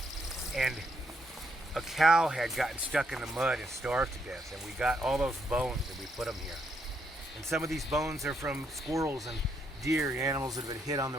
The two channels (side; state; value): both; normal; correlation 0.76